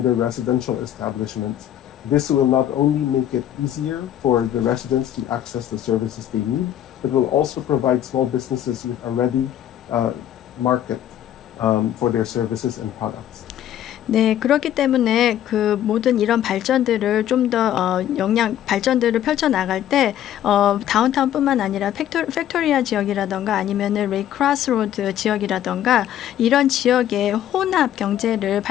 residential establishments. This will not only make it easier for the residents to access the services they need, but will also provide small businesses with a ready market for their services and products. 네, 그렇기 때문에 그 모든 이런 발전들을 좀 더 발전들을 펼쳐 나갈 때 다운타운뿐만 아니라 팩토리아 지역이라던가 아니면은 레이크로스 로드 지역이라던가 이런 지역의 혼합 경제를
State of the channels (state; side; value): quieter; right; 11.3 dB